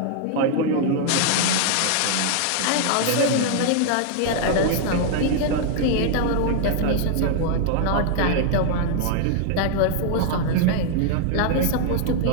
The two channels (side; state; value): both; different; correlation 0.00